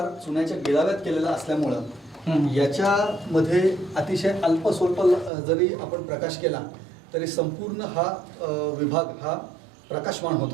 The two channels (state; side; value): drops out; left; at 5.3 s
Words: चुन्याच्या गिळाव्यात केलेला असल्यामुळं याच्यामध्ये अतिशय अल्प स्वल्प जरी आपण प्रकाश केला तरी संपूर्ण हा विभाग हा प्रकाशमान होत